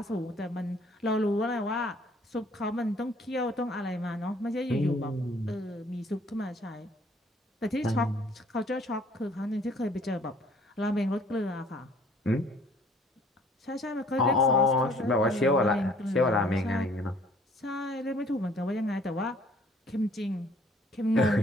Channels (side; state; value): both; normal; correlation 0.58